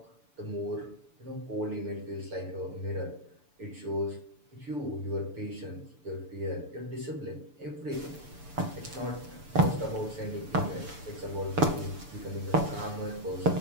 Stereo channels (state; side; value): late; left; 6.9 ms